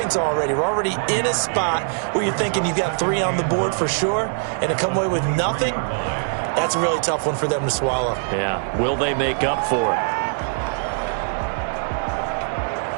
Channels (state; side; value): silent; left; digital silence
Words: already. We're already in a spot where you're thinking you've got 3 on the board for sure, and to come away with nothing, that's a really tough one for them to swallow. Yeah. Will they make up for it?